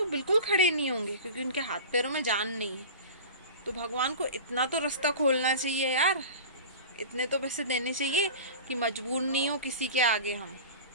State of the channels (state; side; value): inverted; both; correlation -0.34